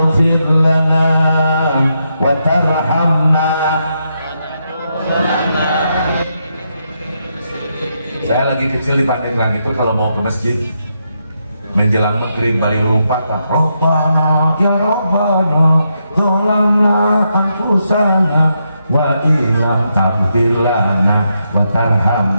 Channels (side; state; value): both; inverted; correlation -0.82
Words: lana wa tarhamna. Saya lagi kecil di Pandeglang itu kalau mau ke masjid menjelang maghrib balik lupa Pak, Rabbana ya Rabbana zalamna anfusana wa illam taghfir lana wa